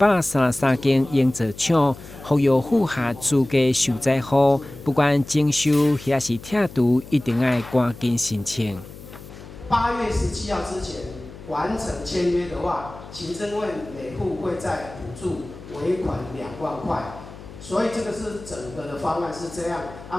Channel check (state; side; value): noise; left; hum, 16 dB below the sound